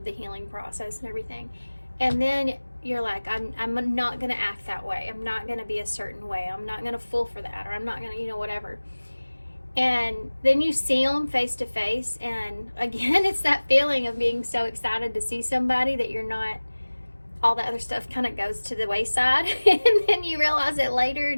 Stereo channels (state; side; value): inverted; both; correlation -1.00